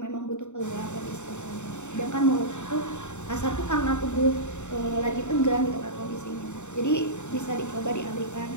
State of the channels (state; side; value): late; right; 0.84 ms